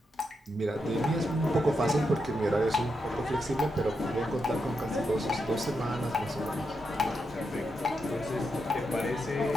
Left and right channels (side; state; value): both; normal; correlation 0.85